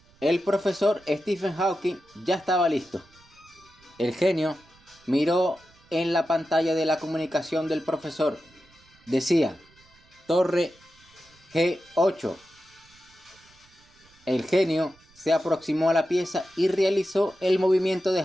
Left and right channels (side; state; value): right; noise; rumble, 29 dB below the sound